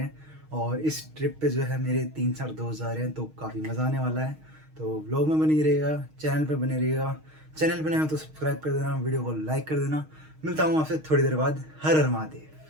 हैं। और इस ट्रिप पे जो है मेरे 3-4 दोस्त जा रहे हैं, तो काफ़ी मज़ा आने वाला है। तो व्लॉग में बने रहिएगा, चैनल पे बने रहिएगा। चैनल पे नए हो तो सब्सक्राइब कर देना, वीडियो को लाइक कर देना। मिलता हूँ आपसे थोड़ी देर बाद। हर हर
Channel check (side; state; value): left; late; 6.4 ms